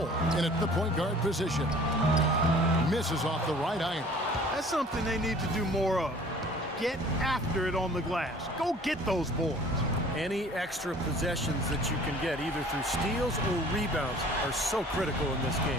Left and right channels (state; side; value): normal; both; correlation 0.50